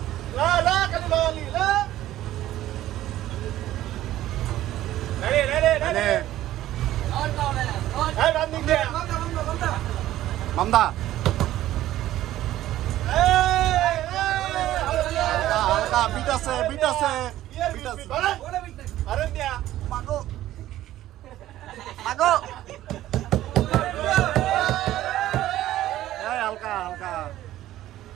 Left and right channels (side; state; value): left; quieter; 14.1 dB